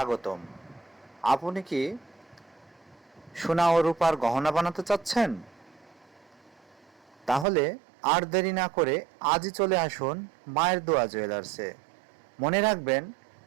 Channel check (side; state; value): left; drops out; at 7.5 s